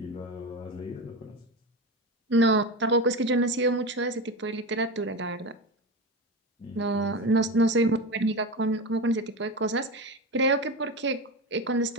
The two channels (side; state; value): both; normal; correlation 0.22